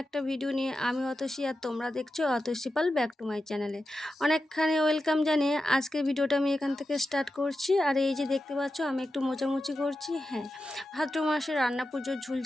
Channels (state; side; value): normal; both; correlation 0.91